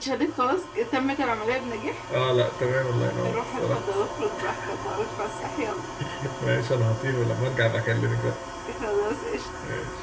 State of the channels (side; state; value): both; identical; correlation 1.00